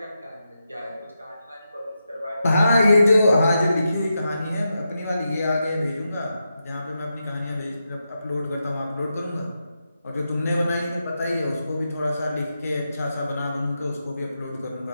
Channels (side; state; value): both; inverted; correlation -0.87